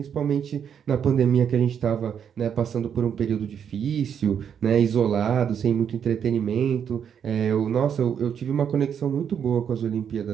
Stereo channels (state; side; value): quieter; left; 8.1 dB